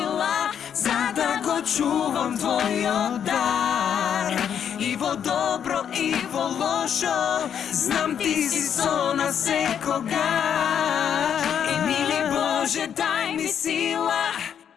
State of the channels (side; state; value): right; quieter; 8.5 dB